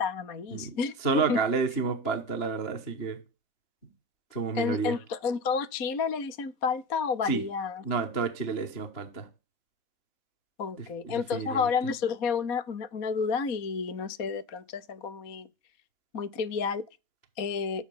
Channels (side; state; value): right; late; 4.1 ms